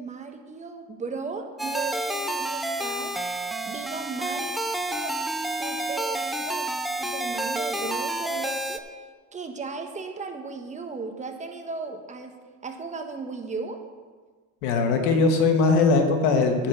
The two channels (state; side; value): normal; both; correlation 0.38